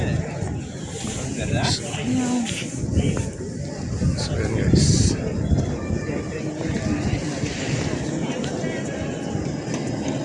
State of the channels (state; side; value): identical; both; correlation 1.00